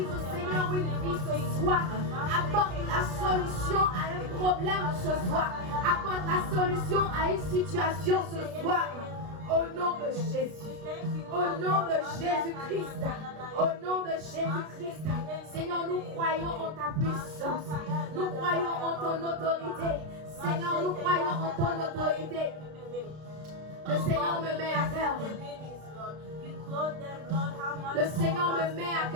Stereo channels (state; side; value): late; left; 33 ms